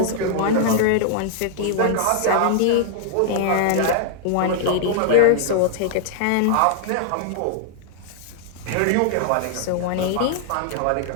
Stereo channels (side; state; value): both; different; correlation -0.01